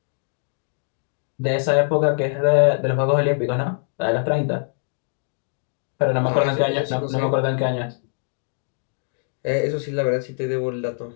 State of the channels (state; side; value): silent; right; 63 dB below the other